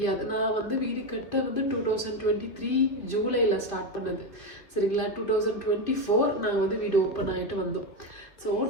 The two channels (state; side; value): late; right; 2.7 ms